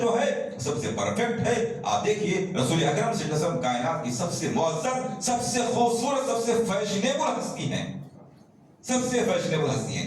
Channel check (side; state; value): both; identical; correlation 1.00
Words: ہے سب سے پرفیکٹ ہے۔ آپ دیکھیے رسول اکرم صلی اللہ علیہ وسلم کائنات کی سب سے معزز، سب سے خوبصورت، سب سے فیشنیبل ہستی ہیں، سب سے فیشنیبل ہستی